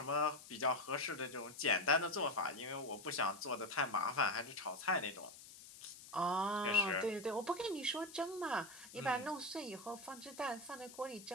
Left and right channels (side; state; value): left; noise; hiss, 17 dB below the sound